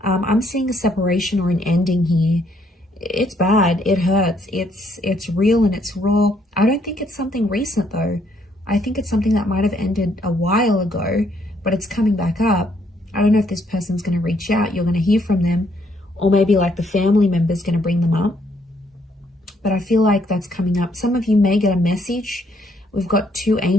I'm seeing a separation or an ending here. It's bad. It hurts. It's real and it's raw. I don't think it's something recent though. I think it's something that might have ended a while ago, but it's coming back up. I don't know if this person's going to reach out. You're going to hear from them, or maybe like the family member's going to bring them up. But I feel like that's coming up. Some of you may get a message. We've got two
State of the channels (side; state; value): both; normal; correlation 0.70